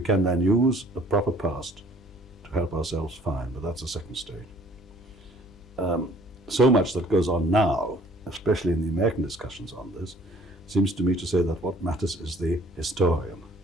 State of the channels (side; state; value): left; noise; hum, 24 dB below the sound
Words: then use a proper past to help ourselves, fine, but that's the second stage. So much that goes on now, especially in the American discussions on this, seems to me to say that what matters is the historian,